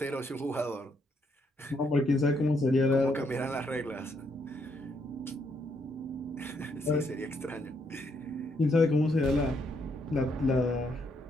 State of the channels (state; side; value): normal; both; correlation 0.74